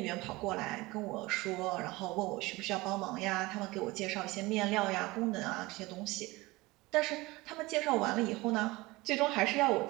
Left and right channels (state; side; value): quieter; left; 21.5 dB